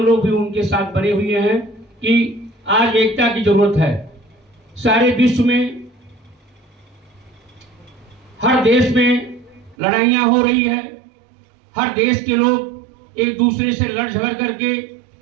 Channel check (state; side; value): drops out; left; at 9.8 s